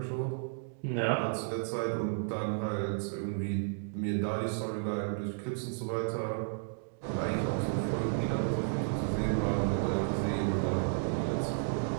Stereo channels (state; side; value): silent; left; digital silence